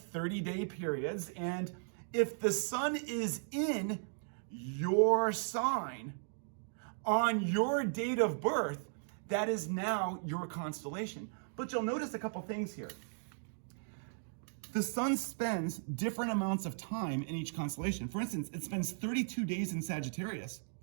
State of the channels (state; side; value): silent; left; digital silence